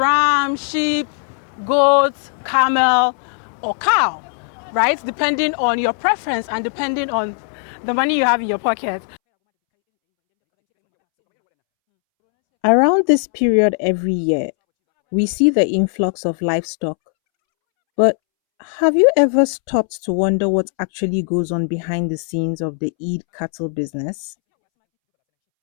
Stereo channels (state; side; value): silent; right; 67 dB below the other